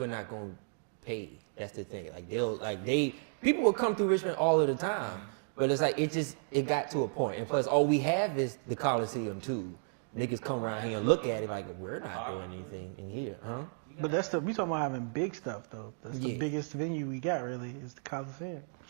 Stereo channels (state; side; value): silent; left; digital silence